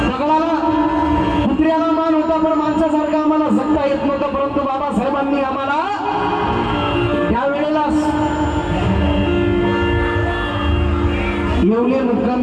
दगडाला कुत्र्याला मान होता पण माणसासारखा आम्हाला जगता येत नव्हतं, परंतु बाबासाहेबांनी आम्हाला त्यावेळेला येवले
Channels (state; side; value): identical; both; correlation 1.00